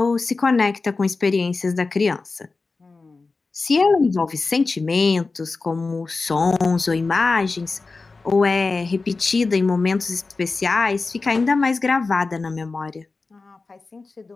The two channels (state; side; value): quieter; right; 3.9 dB